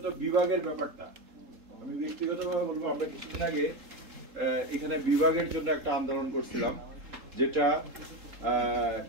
বিভাগের ব্যাপারটা, আমি ব্যক্তিগতভাবে বলবো, আমরা কিছুদিন আগে এখানে বিভাগের জন্য একটা আন্দোলন করছিলাম, যেটা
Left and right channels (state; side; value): late; left; 3.8 ms